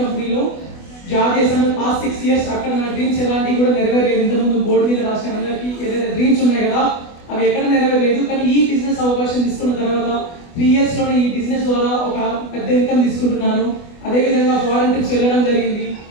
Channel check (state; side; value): late; right; 24 ms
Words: జాబ్ చేశాను. పాస్ట్ 6 years అక్కడ నా డ్రీమ్స్ ఎలాంటివి కూడా నెరవేరలేదు. ఇంతకుముందు బోర్డు మీద రాసిన అందరికీ ఏదైతే డ్రీమ్స్ ఉన్నాయి కదా అవి ఎక్కడ నెరవేరలేదు. కానీ ఈ బిజినెస్ అవకాశం తీసుకున్న తర్వాత 3 yearsలోనే ఈ బిజినెస్ ద్వారా ఒక పెద్ద ఇన్కమ్ తీసుకుంటున్నాను. అదేవిధంగా ఫారెన్ ట్రిప్స్ వెళ్ళడం జరిగింది.